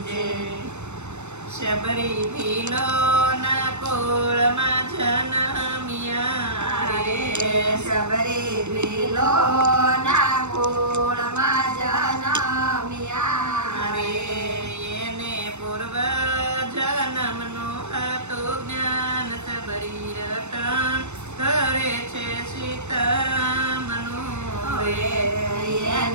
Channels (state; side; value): late; left; 0.83 ms